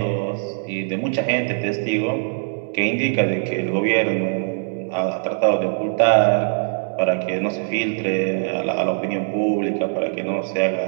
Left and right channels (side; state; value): left; silent; 64 dB below the other